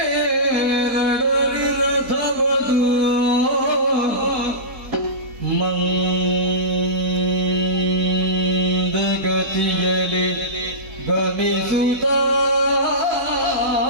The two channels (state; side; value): late; left; 4.1 ms